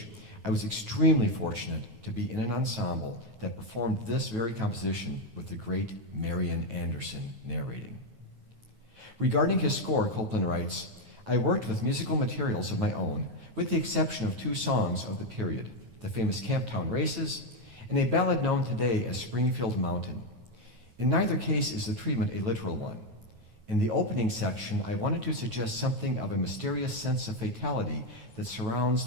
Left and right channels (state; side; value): late; left; 9.2 ms